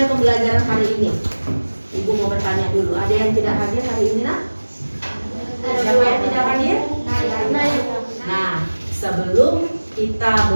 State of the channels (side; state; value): both; inverted; correlation -1.00